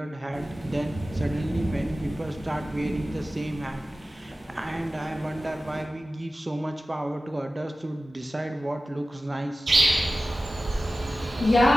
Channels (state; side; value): normal; both; correlation 0.95